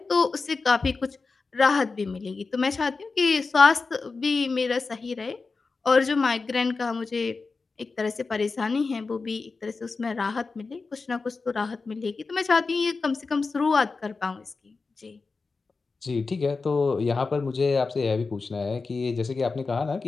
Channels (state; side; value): quieter; right; 4.2 dB